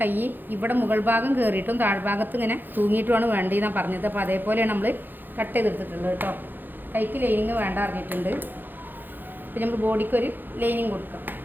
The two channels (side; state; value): left; late; 0.091 ms